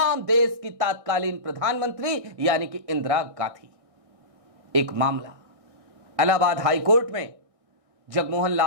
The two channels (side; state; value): left; late; 1.6 ms